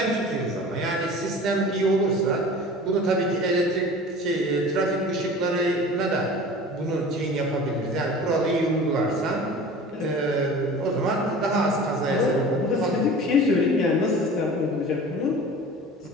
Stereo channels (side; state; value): both; normal; correlation 0.40